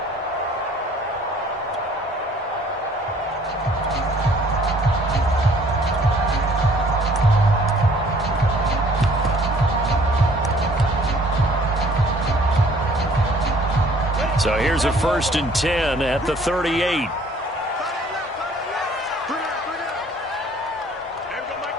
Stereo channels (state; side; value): normal; both; correlation 0.57